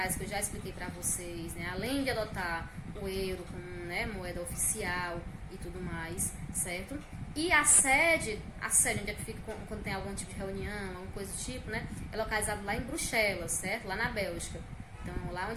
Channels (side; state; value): both; identical; correlation 1.00